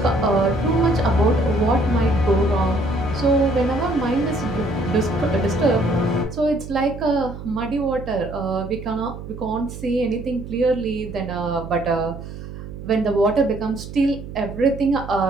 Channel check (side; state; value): right; noise; hum, 11 dB below the sound